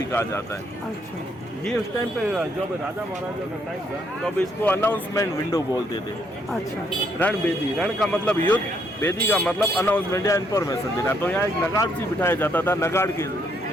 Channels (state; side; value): normal; both; correlation 0.71